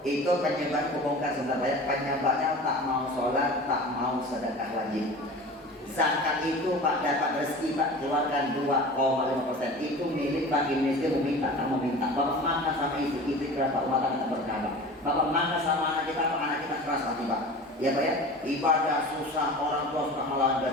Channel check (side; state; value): both; normal; correlation 0.37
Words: Itu penyebab kebongkar sebenarnya. Penyebabnya tak mau sholat, tak mau sedekah wajib. Zakat itu Pak dapat rezeki Pak keluarkan 2,5%. Itu milik bagi miskin meminta, tak meminta. Bapak makan sama istri berapa rumah tangga berkah. Bapak makan sama anak kita, Pak anak kita keras hati Pak. Ya Pak ya. Ibadah susah, orang tua suka melawan